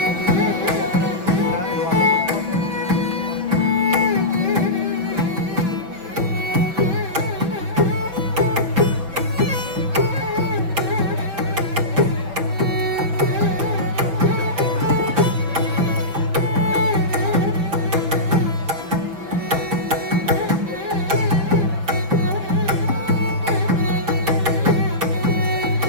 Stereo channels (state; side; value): late; left; 6.2 ms